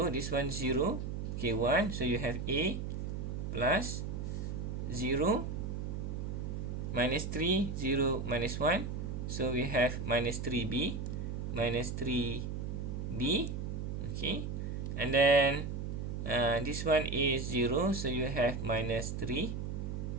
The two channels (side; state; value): right; noise; hum, 4 dB below the sound